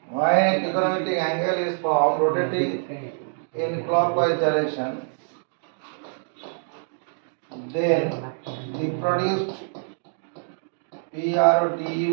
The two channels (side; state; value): left; silent; digital silence